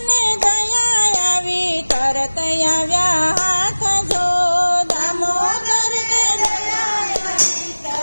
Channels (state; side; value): inverted; both; correlation -1.00